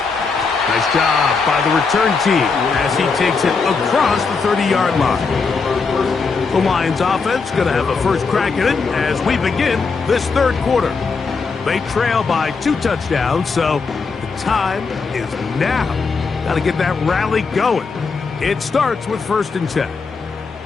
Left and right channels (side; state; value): right; quieter; 4.8 dB